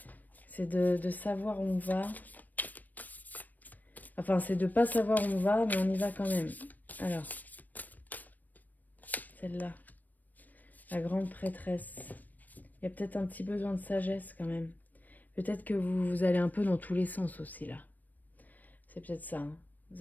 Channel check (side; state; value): right; late; 0.084 ms